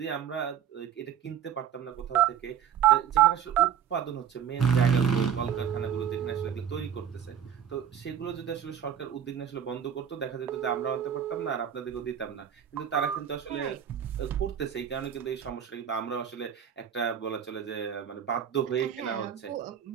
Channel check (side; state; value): left; quieter; 9.0 dB